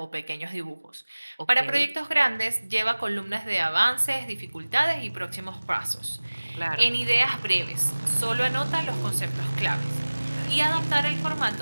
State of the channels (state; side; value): inverted; both; correlation -1.00